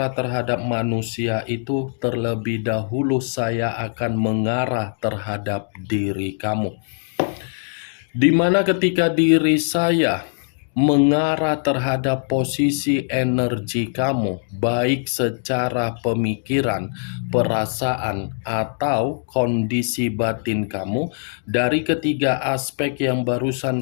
terhadap manusia itu, terlebih dahulu saya akan mengarah terhadap diri kamu. Di mana ketika diri saya mengarah terhadap posisi energi kamu, baik secara pemikiran, perasaan, atau kondisi batin kamu, dari ketiga aspek yang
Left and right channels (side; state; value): right; silent; digital silence